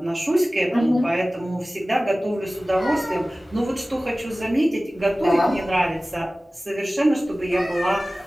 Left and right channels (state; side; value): normal; both; correlation 0.97